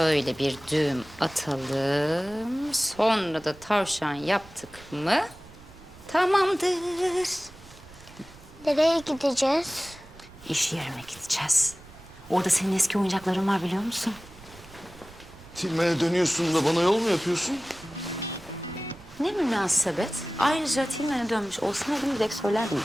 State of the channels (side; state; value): right; noise; rumble, 21 dB below the sound